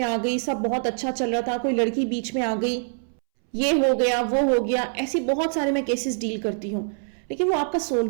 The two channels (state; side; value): silent; left; 62 dB below the other